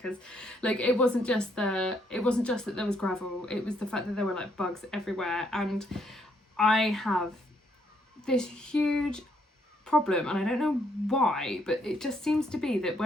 like it wasn't just that there was gravel. It was the fact that there were like bugs everywhere. And I have this huge problem, and I don't know why, but it just seems to be that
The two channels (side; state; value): both; normal; correlation 0.72